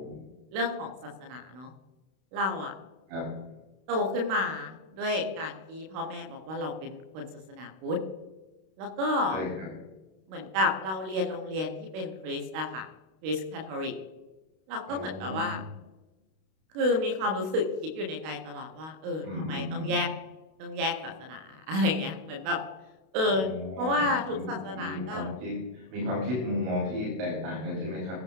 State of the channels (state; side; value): late; left; 32 ms